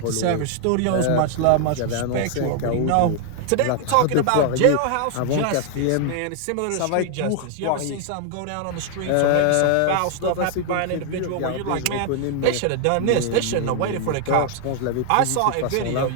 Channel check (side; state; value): both; different; correlation 0.00